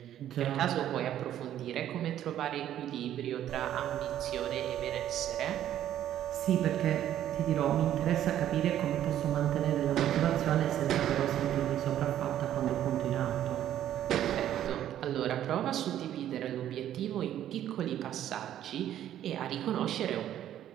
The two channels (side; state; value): left; quieter; 11.5 dB